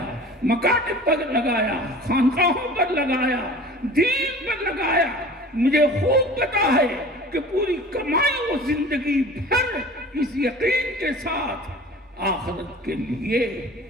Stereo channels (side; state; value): both; normal; correlation 0.42